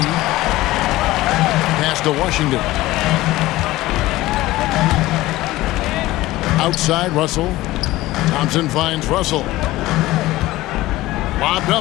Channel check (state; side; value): quieter; right; 17.6 dB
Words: Pass to Washington. Outside Russell. Thompson finds Russell. Lobbed